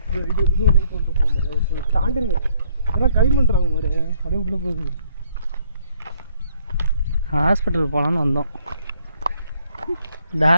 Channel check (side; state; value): both; inverted; correlation -0.66